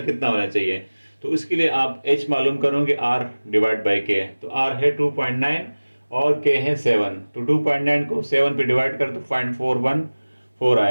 होना चाहिए? तो इसके लिए आप h मालूम करोगे, r डिवाइड बाई k। तो r है 2.9 और k है 7। तो 2.9 को 7 पे डिवाइड कर तो 0.414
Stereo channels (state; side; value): inverted; both; correlation -1.00